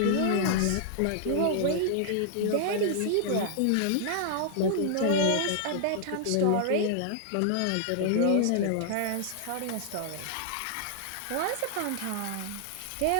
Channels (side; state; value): both; different; correlation -0.01